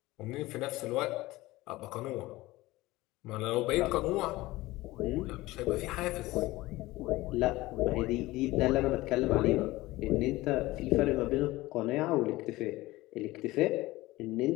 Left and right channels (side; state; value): right; quieter; 18.9 dB